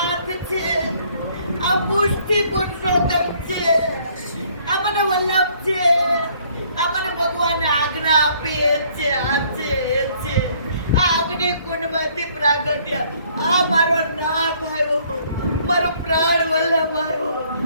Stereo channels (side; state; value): both; inverted; correlation -0.62